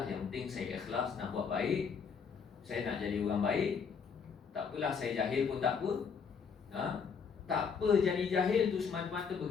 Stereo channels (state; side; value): quieter; right; 6.1 dB